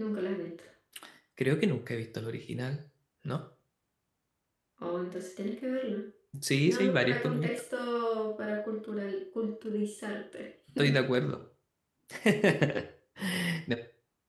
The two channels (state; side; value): identical; both; correlation 1.00